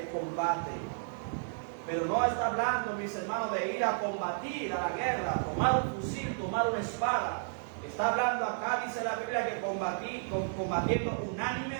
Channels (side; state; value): left; silent; digital silence